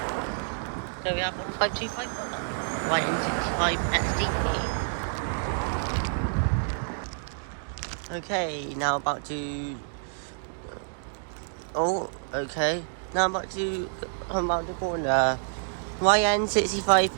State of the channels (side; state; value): left; silent; digital silence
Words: so we have 15251 YN65 XDP. Okay, now about to. Oh, okay. Now I'm about to come around the corner. YN65